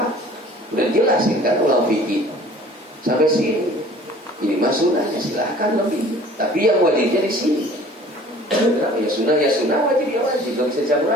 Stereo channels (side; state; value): both; normal; correlation 0.49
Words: Udah jelasin kan ulang fikih. Sampai sini. Ini mah sunnahnya, silahkan lebih. Tapi yang wajibnya di sini. Ya sunnah, wajib ya wajib. Tidak bisa